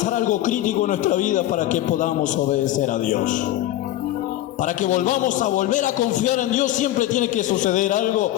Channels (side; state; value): right; quieter; 14.2 dB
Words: algo crítico en nuestra vida para que podamos obedecer a Dios. Para que volvamos a volver a confiar en Dios, siempre tiene que suceder algo